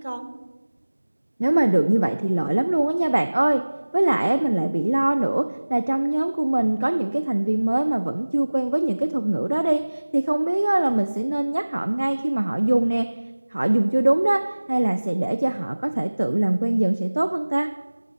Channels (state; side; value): inverted; both; correlation -1.00